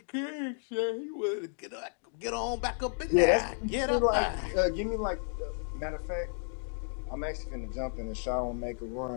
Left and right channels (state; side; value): silent; right; 56 dB below the other